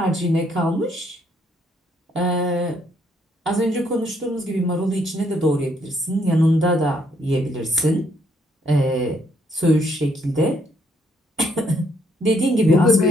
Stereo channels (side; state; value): both; normal; correlation 0.70